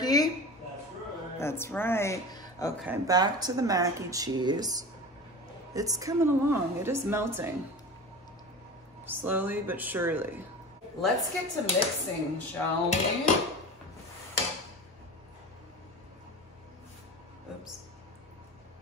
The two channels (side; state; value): both; normal; correlation 0.32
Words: That's right. That's right. Okay, back to the mac and cheese. It's coming along, it is melting. Slowly but surely. Let's get to mixing, shall we? Oops.